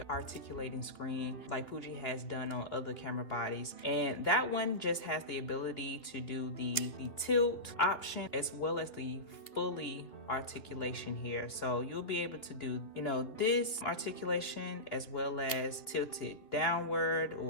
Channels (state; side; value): late; right; 2.5 ms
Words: articulating screen like Fuji has done on other camera bodies, and that one just has the ability to do the tilt option as well as the fully articulation here. So you'll be able to do, you know, this articulation as well as tilt it downward